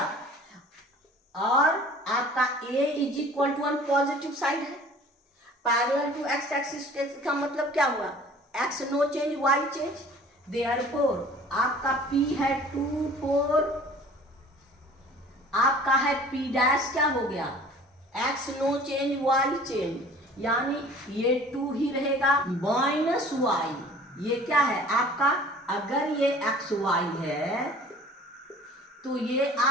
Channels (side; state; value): both; normal; correlation 0.48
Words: और आपका a is equal to 1 positive side है, पैरेलल टू x एक्सिस का मतलब क्या हुआ, x no change y change, therefore आपका p है 2 4, आपका है p डैश क्या हो गया, x no change y change, यानी ये 2 ही रहेगा माइनस y, ये क्या है आपका, अगर ये x y है तो ये